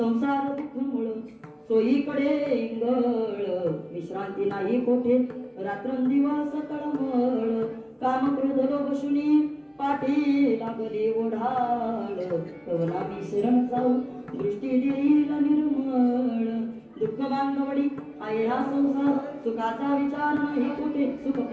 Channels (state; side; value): identical; both; correlation 1.00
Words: दुःख मुळ सोयीकडे इंगळ विश्रांती नाही कोठे रात्रंदिवस तळमळ काम क्रोध लोभ शुनी पाठी लागली ओढाळ कवना मी शरण जाऊ दृष्टी देईल निर्मळ दुःख बांधवडी आहे हा संसार सुखाचा विचार नाही कुठे सुख